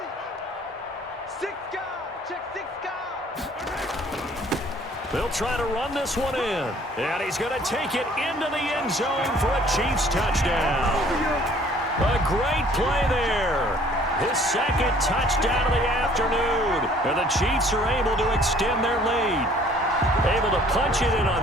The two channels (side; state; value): both; normal; correlation 0.56